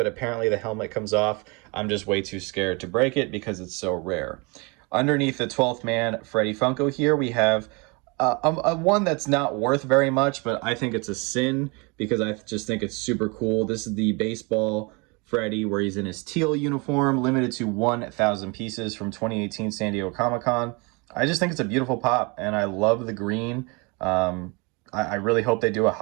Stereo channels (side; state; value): left; quieter; 29.4 dB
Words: apparently the helmet comes off. I'm just way too scared to break it because it's so rare. Underneath the 12th man Freddy Funko here, we have a one that's not worth very much, but I think it's a sin because I just think it's super cool. This is the baseball Freddy, where he's in his teal uniform, limited to 1,000 pieces from 2018 San Diego Comic-Con. I just think it's a beautiful pop, and I love the green. I really hope they do a